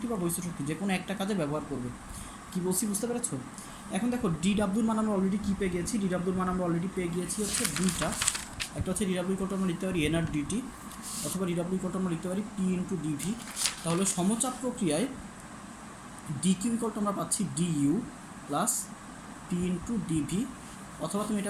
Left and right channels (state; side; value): identical; both; correlation 1.00